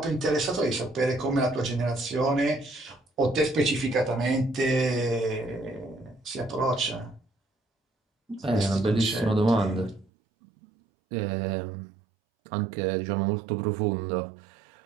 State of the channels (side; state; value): left; drops out; at 10.1 s